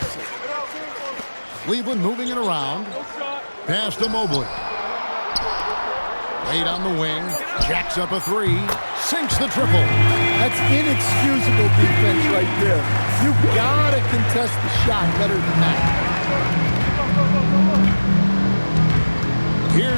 Cleveland moving it around. Pass to Mobley. Wade on the wing. Jacks up a 3. Sinks the triple. That's inexcusable defense right there. You've got to contest the shot better than that.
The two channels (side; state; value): both; inverted; correlation -1.00